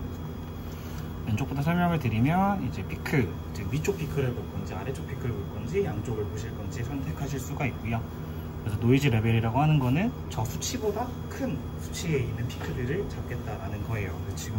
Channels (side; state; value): both; identical; correlation 1.00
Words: 왼쪽부터 설명을 드리면 이제 피크, 이제 위쪽 피크를 볼 건지 아래쪽 피크를 볼 건지 양쪽을 보실 건지 선택하실 수가 있고요. 그래서 노이즈 레벨이라고 하는 거는 저 수치보다 큰 수치에 있는 피크들을 잡겠다라는 거예요.